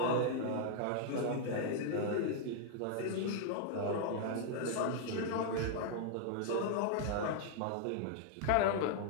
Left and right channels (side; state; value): both; different; correlation 0.00